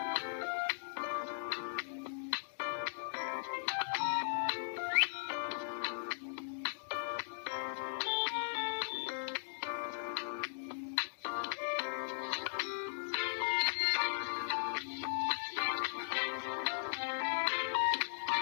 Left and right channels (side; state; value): right; silent; digital silence